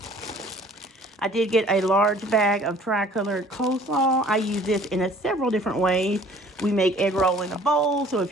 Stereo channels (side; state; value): both; normal; correlation 0.52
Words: I did get a large bag of tri-colored coleslaw. I use this in several different ways. We make egg roll in a bowl, so if